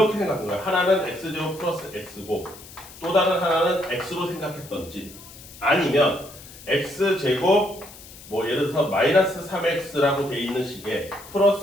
생각한 거예요. 하나는 x제곱 플러스 x고 또 다른 하나는 x로 생각했던지 아니면 x제곱 예를 들어서 마이너스 3x라고 돼 있는 식에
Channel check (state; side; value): noise; left; hiss, 18 dB below the sound